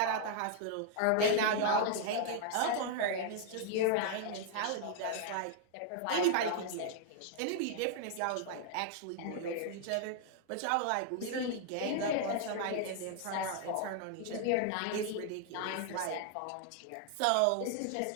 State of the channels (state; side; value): different; both; correlation 0.00